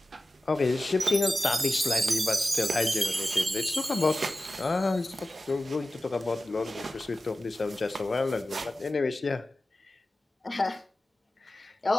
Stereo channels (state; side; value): normal; both; correlation 0.95